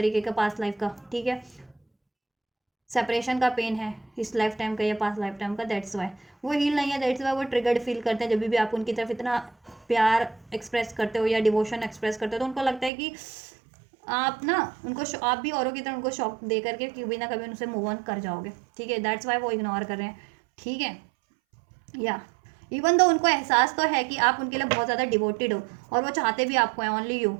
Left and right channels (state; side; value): drops out; left; at 12.9 s